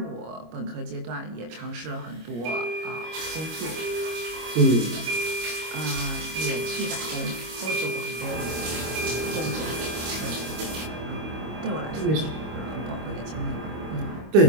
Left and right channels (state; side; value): late; left; 25 ms